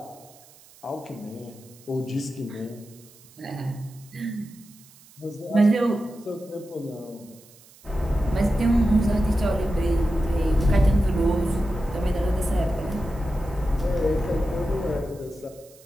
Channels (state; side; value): noise; right; hiss, 25 dB below the sound